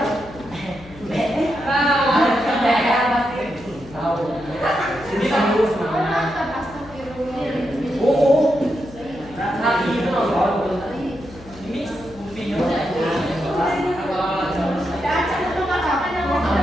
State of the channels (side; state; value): left; noise; hum, 19 dB below the sound